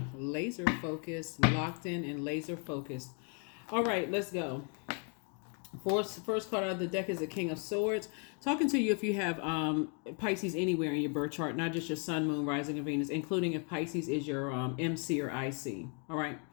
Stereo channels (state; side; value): quieter; right; 38.9 dB